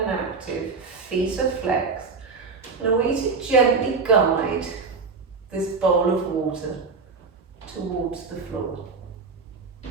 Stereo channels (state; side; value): quieter; left; 4.7 dB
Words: and active, feet are flexed. And I want you to gently guide this bowl of water towards the floor.